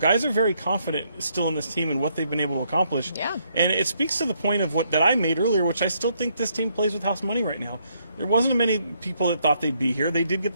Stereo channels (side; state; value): both; inverted; correlation -0.73